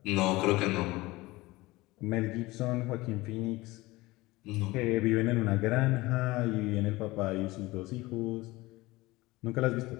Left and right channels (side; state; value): right; quieter; 20.3 dB